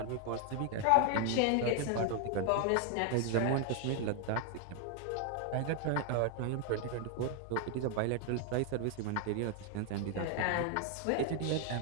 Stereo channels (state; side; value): different; both; correlation 0.00